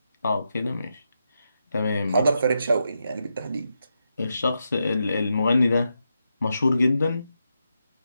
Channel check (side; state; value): both; inverted; correlation -0.85